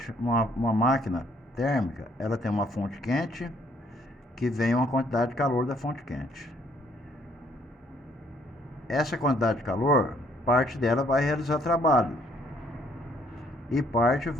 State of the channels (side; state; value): both; normal; correlation 0.65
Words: uma máquina térmica, ela tem uma fonte quente que vem uma quantidade de calor da fonte quente. Essa quantidade de calor, parte dela vai realizar trabalho e parte